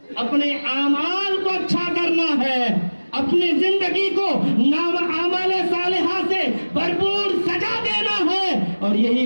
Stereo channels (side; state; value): both; inverted; correlation -1.00